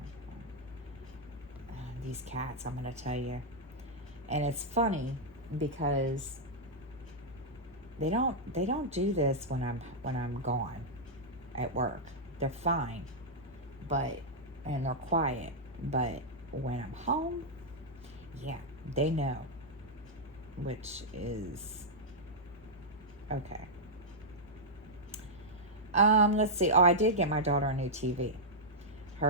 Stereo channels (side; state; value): both; normal; correlation -0.07